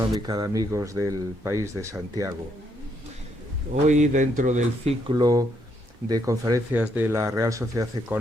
de Amigos del País de Santiago. Hoy, dentro del ciclo de conferencias de la Real Sociedad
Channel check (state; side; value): normal; both; correlation 0.74